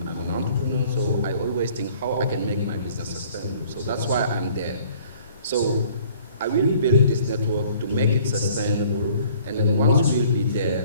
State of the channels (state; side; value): inverted; both; correlation -0.54